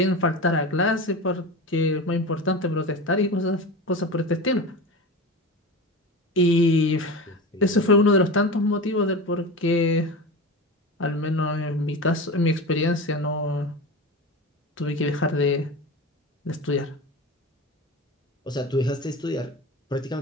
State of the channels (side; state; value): both; normal; correlation 0.27